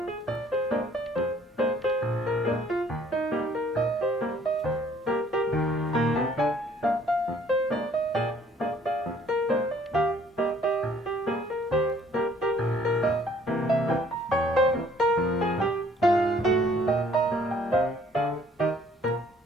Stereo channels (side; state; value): both; normal; correlation 0.60